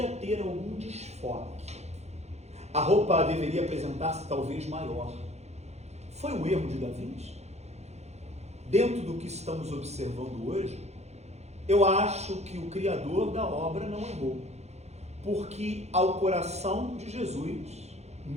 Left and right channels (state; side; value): late; left; 0.32 ms